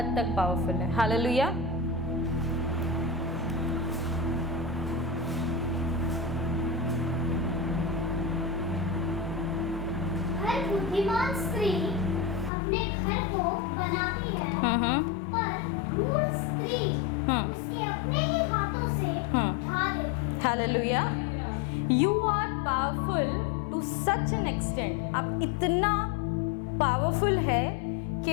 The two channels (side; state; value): right; drops out; at 12.5 s